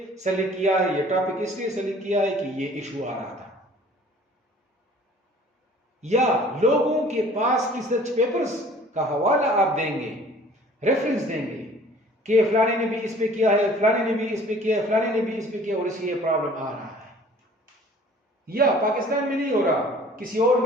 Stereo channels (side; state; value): both; normal; correlation 0.51